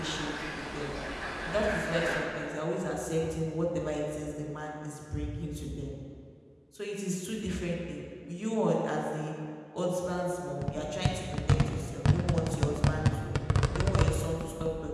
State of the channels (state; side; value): identical; both; correlation 1.00